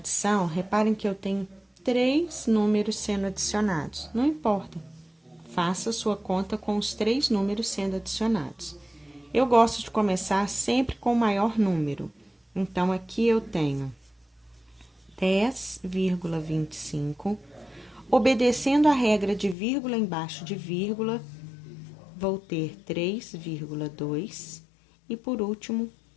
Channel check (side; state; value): right; drops out; at 19.6 s